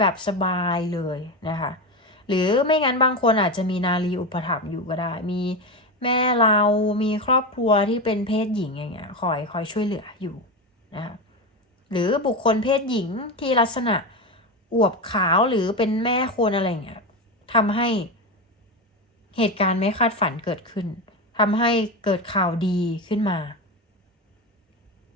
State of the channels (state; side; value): normal; both; correlation 0.17